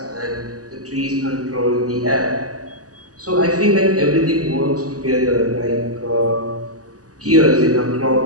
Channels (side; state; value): left; late; 0.67 ms